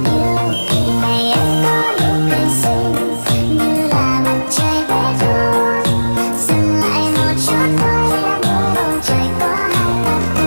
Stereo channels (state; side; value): inverted; both; correlation -1.00